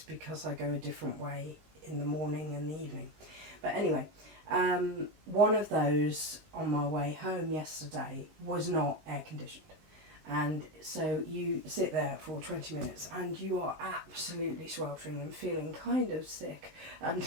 because I go a different way in the morning and the evening. But anyway, one of those on my way home yesterday was not air conditioned. And so you sit there for 20 minutes and you are absolutely sweltering and feeling kind of sick and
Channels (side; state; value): left; late; 19 ms